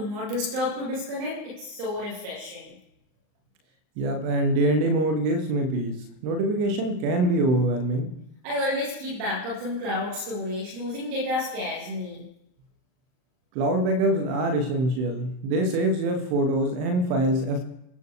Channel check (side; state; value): left; late; 39 ms